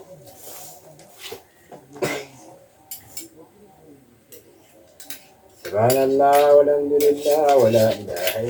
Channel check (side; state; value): both; identical; correlation 1.00